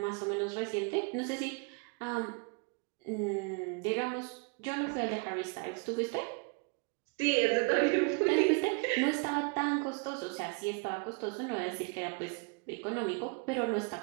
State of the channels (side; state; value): left; quieter; 32.5 dB